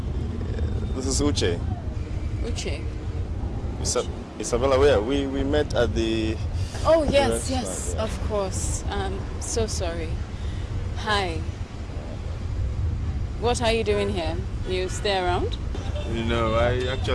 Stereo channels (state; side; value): identical; both; correlation 1.00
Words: This is Uche. Uche. Isabella, where? We met at the... Oh, yes, of course. So sorry. Hi. What are you doing here? You stay around? No, I